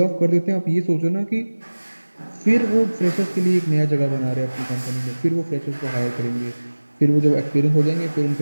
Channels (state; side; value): inverted; both; correlation -1.00